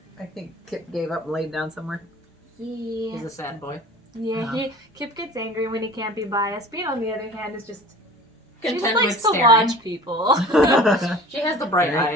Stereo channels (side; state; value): both; normal; correlation 0.42